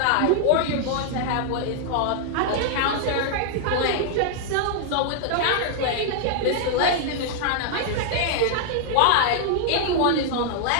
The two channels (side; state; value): both; different; correlation -0.01